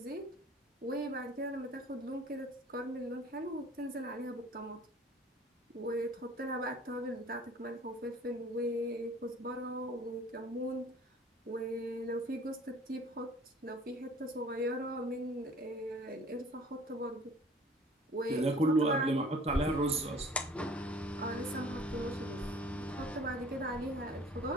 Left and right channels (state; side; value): normal; both; correlation 0.50